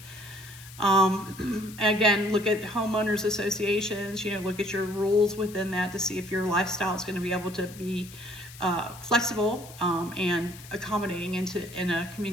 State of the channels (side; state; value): left; noise; hiss, 18 dB below the sound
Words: Again, look at homeowners associations, look at your rules within that to see if your lifestyle is going to be able to be flexible and accommodating in a